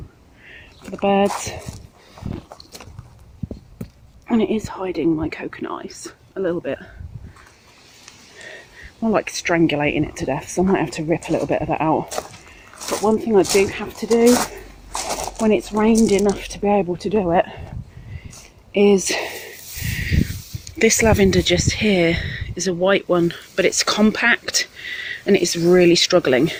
for the birds, and it is hiding my coconut ice a little bit, more like strangulating it to death, so I might have to rip a little bit of that out. But one thing I do have to do when it's rained enough to be able to do it is this lavender just here is a white one, but it's compact and it's really struggling.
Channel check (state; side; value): identical; both; correlation 1.00